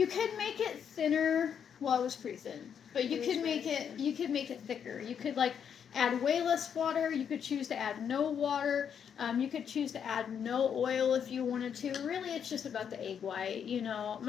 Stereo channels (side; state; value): right; quieter; 7.9 dB